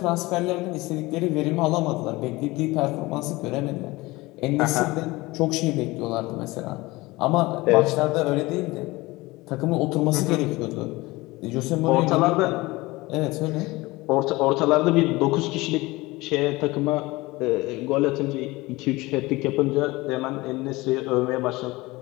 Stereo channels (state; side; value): quieter; right; 21.2 dB